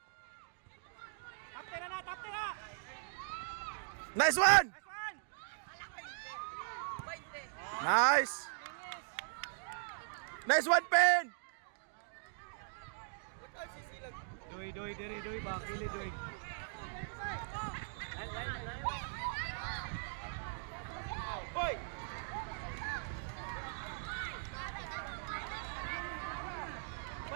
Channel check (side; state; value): left; silent; digital silence